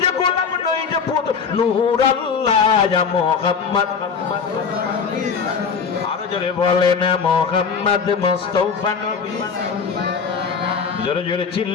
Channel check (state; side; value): quieter; right; 5.9 dB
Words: যে গোলাপ নই যে পুতুল নূর আল্লাহ ইয়া মুহাম্মদ আরো জোরে বলেন মুহাম্মদ মুস্তাফা নবী জোরে জোরে